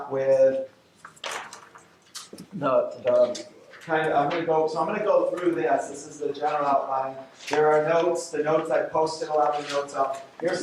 with the kind of, I'm going to go through this. This is the general outline. There are notes. The notes I posted a lot of the notes up. Here's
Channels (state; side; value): identical; both; correlation 1.00